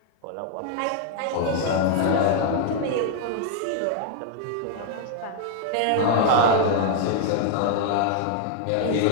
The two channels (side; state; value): both; different; correlation 0.00